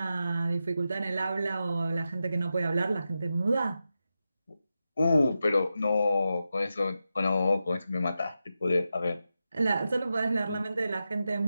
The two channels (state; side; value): inverted; both; correlation -0.90